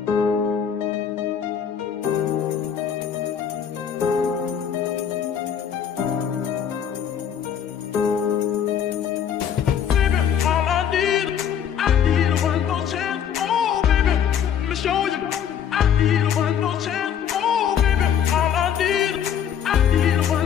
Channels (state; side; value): quieter; right; 8.6 dB